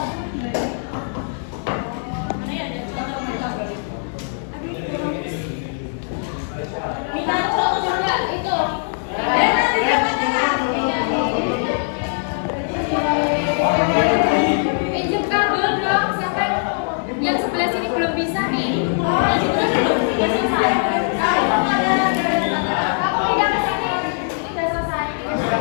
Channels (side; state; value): right; silent; digital silence